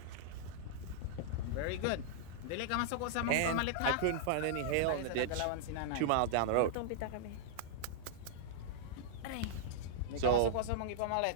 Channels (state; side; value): different; both; correlation -0.01